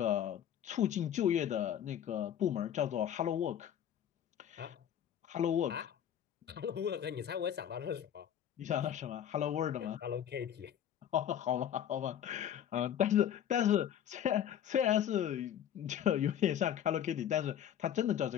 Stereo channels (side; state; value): right; quieter; 9.9 dB